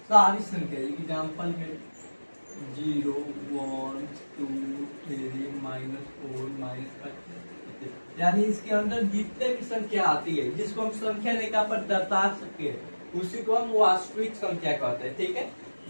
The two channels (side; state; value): both; inverted; correlation -1.00